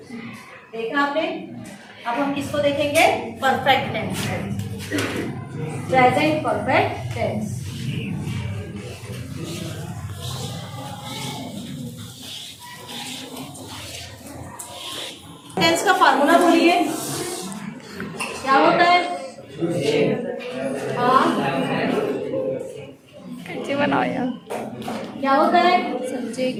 आपने। अब हम किसको देखेंगे? Perfect tense, present perfect tense. Tense का फार्मूला बोलिए, क्या होता है? हाँ, कैसे बनाओ यार? क्या होता है?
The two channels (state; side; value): identical; both; correlation 1.00